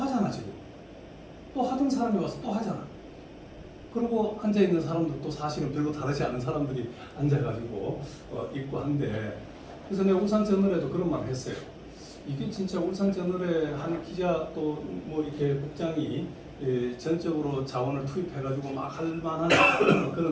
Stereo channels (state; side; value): identical; both; correlation 1.00